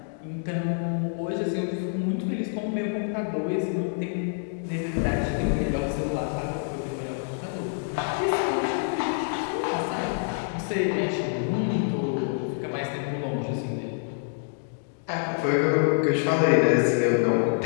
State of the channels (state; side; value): silent; right; digital silence